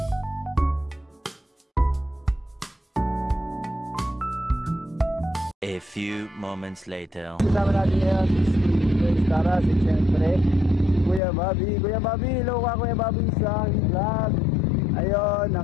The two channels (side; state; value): right; drops out; at 11.2 s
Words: A few moments later. Kasama natin ngayon si Taras, at syempre Kuya Bobby. Kuya Bobby, hello ka Kuya Bobby sa vlog. Ayun,